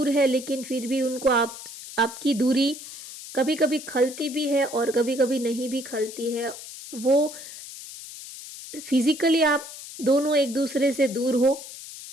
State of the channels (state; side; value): noise; left; hiss, 13 dB below the sound